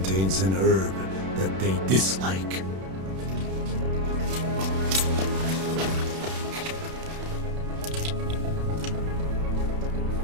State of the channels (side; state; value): left; late; 31 ms